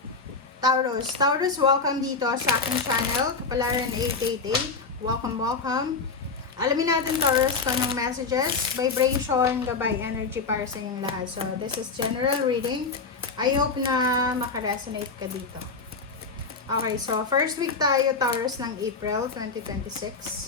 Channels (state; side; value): quieter; right; 4.5 dB